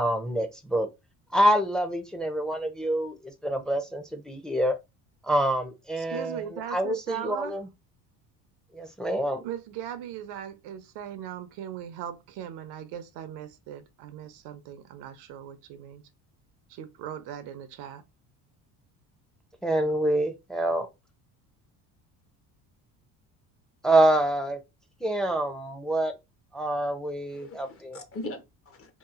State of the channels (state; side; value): normal; both; correlation 0.78